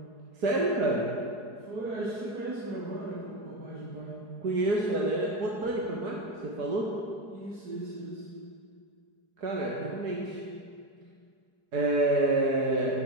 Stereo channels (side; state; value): left; late; 4.8 ms